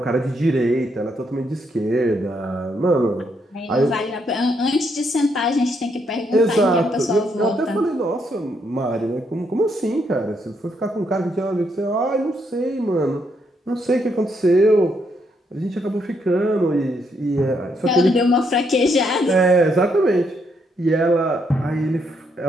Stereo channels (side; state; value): both; normal; correlation 0.75